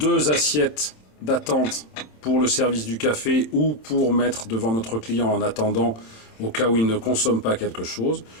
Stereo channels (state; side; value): late; right; 27 ms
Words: assiettes d'attente pour le service du café ou pour mettre devant notre client en attendant au cas où il ne consomme pas quelque chose.